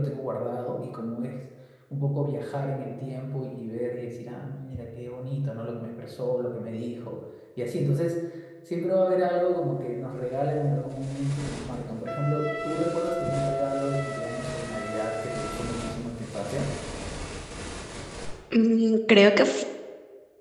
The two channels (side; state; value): both; identical; correlation 1.00